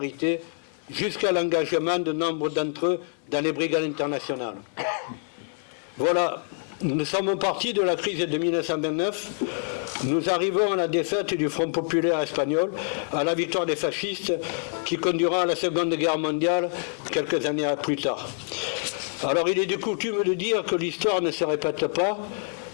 jusqu'à l'engagement de nombre d'entre eux dans les brigades internationales. Voilà, nous sommes partis de la crise de 1929, nous arrivons à la défaite du Front populaire espagnol, à la victoire des fascistes qui conduira à la Seconde Guerre mondiale quelques années plus tard. Alors il est de coutume de dire que l'histoire ne se répète pas,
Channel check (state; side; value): silent; right; 61 dB below the other